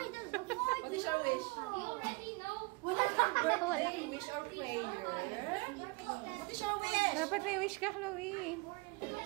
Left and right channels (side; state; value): left; quieter; 26.7 dB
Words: is your wish? Wala na. Birthday, wish or prayer? What is your wish? Dapat may wish ka, Chloe.